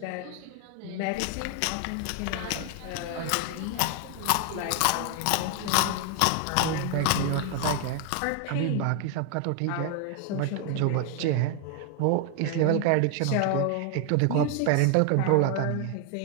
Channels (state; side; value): different; both; correlation 0.00